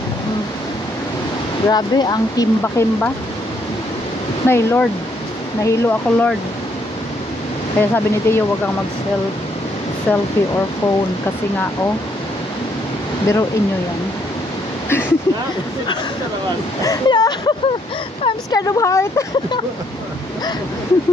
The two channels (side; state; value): both; normal; correlation 0.70